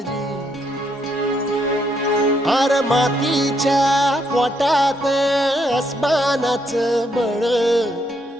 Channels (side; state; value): both; normal; correlation 0.75